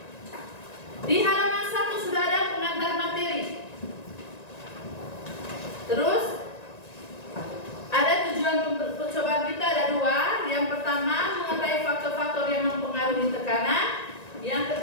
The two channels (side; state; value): right; late; 1.9 ms